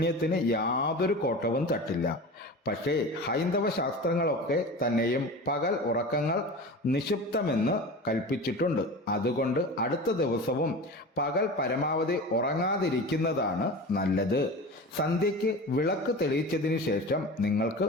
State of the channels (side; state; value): both; normal; correlation 0.32